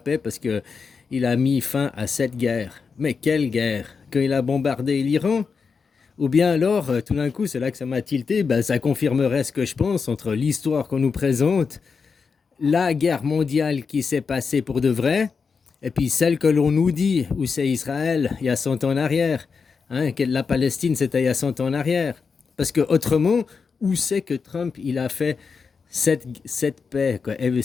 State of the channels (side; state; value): right; quieter; 5.4 dB